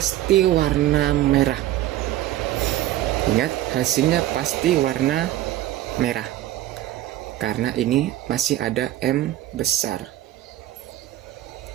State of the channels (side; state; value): left; quieter; 14.1 dB